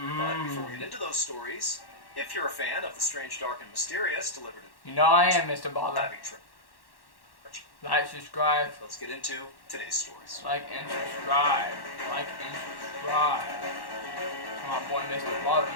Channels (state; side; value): late; right; 1.1 ms